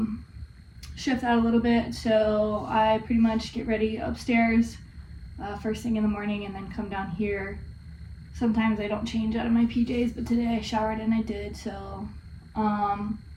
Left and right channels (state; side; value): identical; both; correlation 1.00